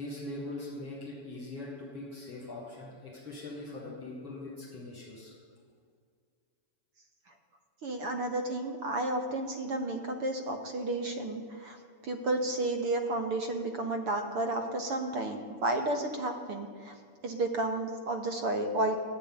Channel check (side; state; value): left; late; 7.1 ms